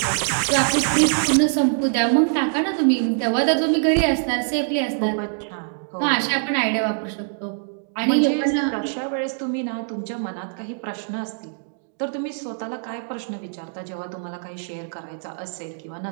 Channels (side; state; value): left; silent; digital silence